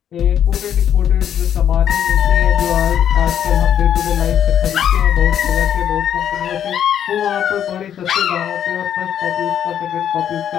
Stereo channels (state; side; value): quieter; right; 9.5 dB